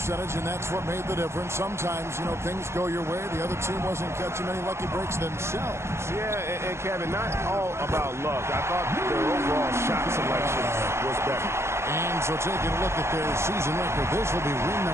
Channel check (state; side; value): late; left; 0.13 ms